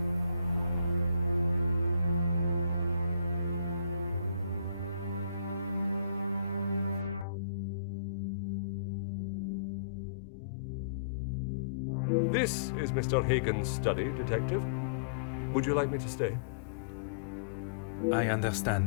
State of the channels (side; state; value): right; drops out; at 7.2 s